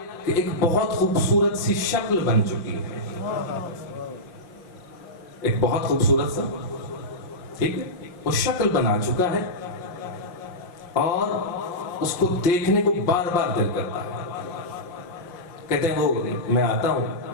کہ ایک بہت خوبصورت سی شکل بن چکی ہے، ایک بہت خوبصورت سا، ٹھیک ہے، وہ شکل بنا چکا ہے اور اس کو دیکھنے کو بار بار دل کرتا ہے. کہتے ہیں وہ میں آتا ہوں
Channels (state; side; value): late; right; 5.7 ms